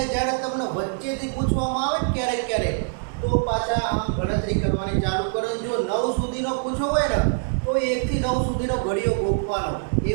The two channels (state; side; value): silent; left; 63 dB below the other